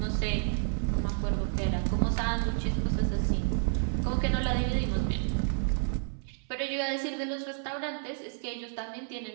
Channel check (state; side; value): silent; left; 58 dB below the other